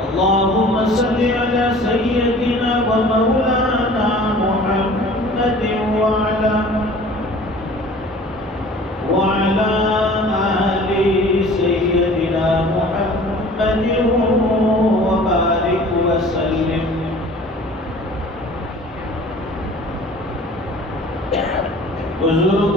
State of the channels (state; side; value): normal; both; correlation 0.46